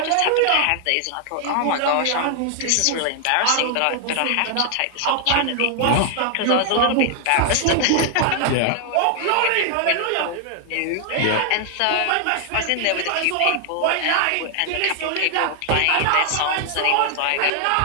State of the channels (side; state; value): both; different; correlation 0.00